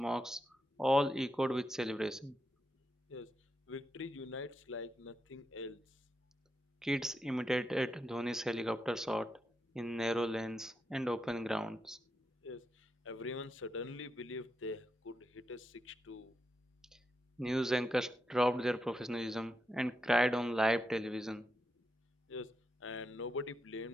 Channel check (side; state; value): both; normal; correlation 0.85